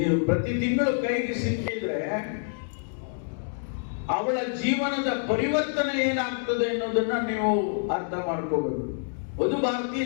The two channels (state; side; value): silent; right; digital silence